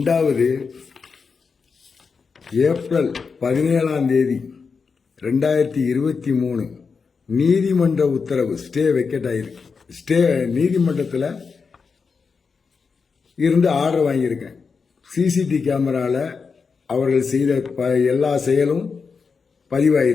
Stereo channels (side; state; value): right; quieter; 5.3 dB